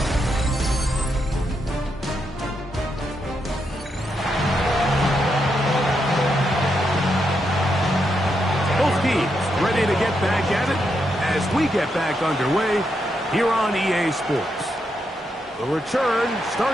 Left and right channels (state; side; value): normal; both; correlation 0.82